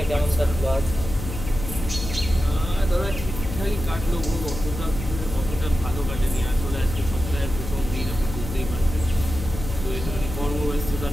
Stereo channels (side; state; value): left; noise; hum, 7 dB below the sound